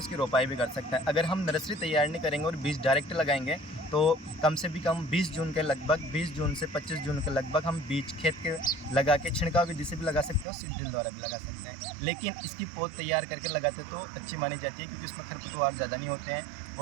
रोपाई भी कर सकते हैं। अगर हम नर्सरी तैयार नहीं करेंगे और बीज डायरेक्ट लगाएंगे तो कम से भी कम 20 जून के लगभग, 20 जून से 25 जून के लगभग हम बीज खेत के लगा के छिड़काव विधि से भी लगा सकते हो, सीड ड्रिल द्वारा भी लगा सकते हैं। लेकिन इसकी पौध तैयार करके लगाते तो अच्छी मानी जाती है, क्योंकि उसमें खरपतवार ज़्यादा नहीं होते हैं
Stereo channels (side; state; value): left; drops out; at 10.5 s